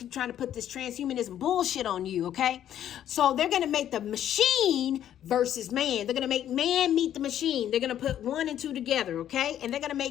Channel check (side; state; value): right; quieter; 10.8 dB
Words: trying to put this transhumanism bullshit on you, okay? So they're going to make the machine versus man. They're going to make man meet the machine. They're going to put 1 and 2 together, okay? And they're going to